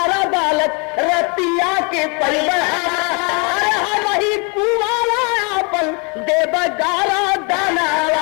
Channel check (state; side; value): quieter; right; 33.3 dB